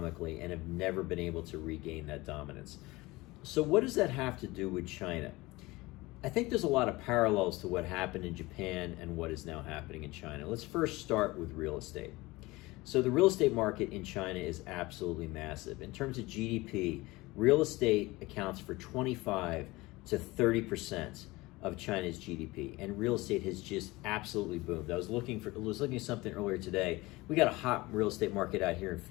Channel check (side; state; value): right; quieter; 21.2 dB